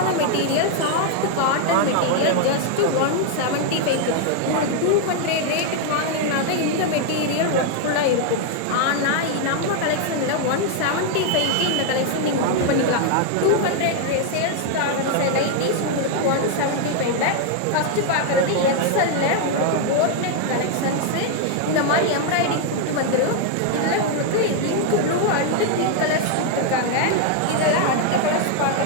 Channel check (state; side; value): different; both; correlation 0.00